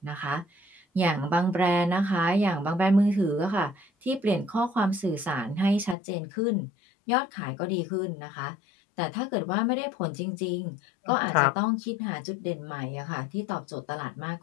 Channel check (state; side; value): drops out; right; at 6.0 s